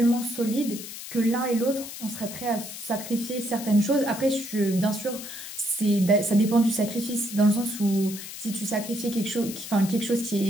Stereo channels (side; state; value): left; noise; hiss, 10 dB below the sound